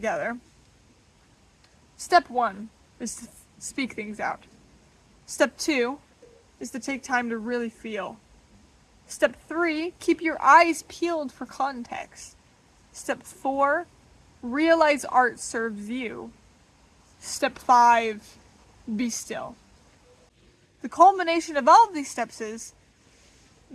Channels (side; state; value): both; identical; correlation 1.00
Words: step 1 is to speak things out. Step 2 is to take time to really feel. Step 3, keep your eyes peeled for context. Step 4, realize art serves you. Step 5, be still. The culmination of all of these steps is